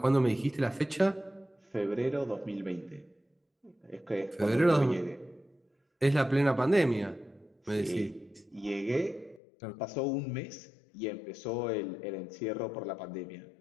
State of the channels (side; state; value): right; drops out; at 9.4 s